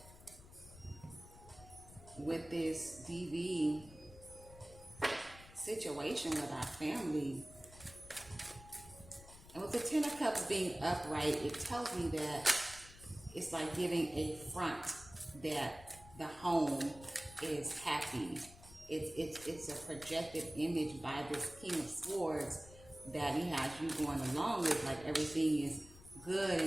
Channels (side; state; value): left; noise; rumble, 19 dB below the sound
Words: with this DV situation with our family. And with the Ten of Cups being upright, it tells me that it's like giving a front that the home is happy. It's a projected image by this King of Swords that he has you going along with, like everything is good